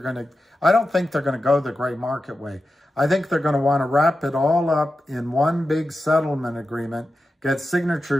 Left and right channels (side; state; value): both; normal; correlation 0.91